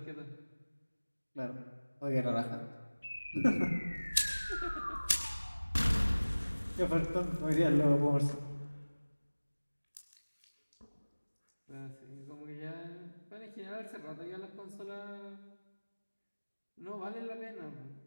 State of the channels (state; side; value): inverted; both; correlation -1.00